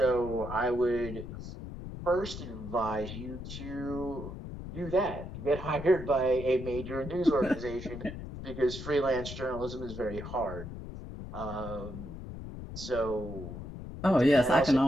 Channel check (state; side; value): noise; left; rumble, 9 dB below the sound